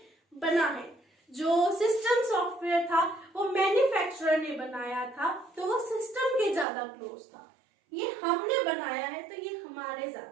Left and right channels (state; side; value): drops out; left; at 6.7 s